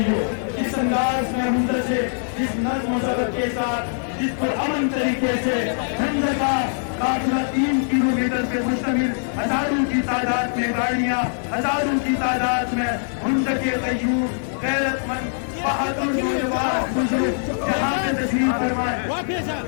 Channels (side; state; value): right; silent; digital silence